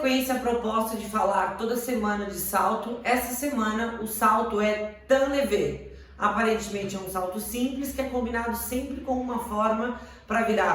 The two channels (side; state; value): both; identical; correlation 1.00